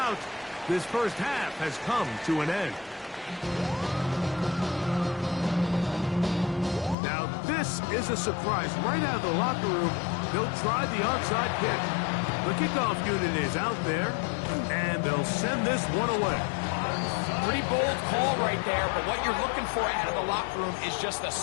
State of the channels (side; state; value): right; drops out; at 7.0 s